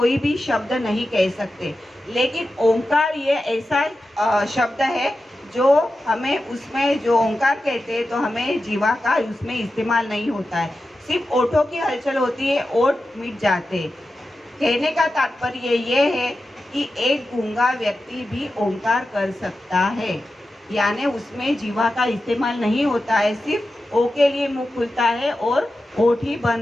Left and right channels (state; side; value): normal; both; correlation 0.92